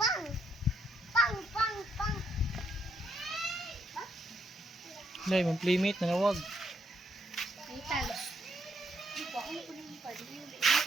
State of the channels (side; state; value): both; normal; correlation 0.74